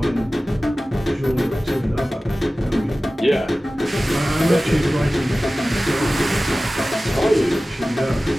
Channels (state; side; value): normal; both; correlation 0.96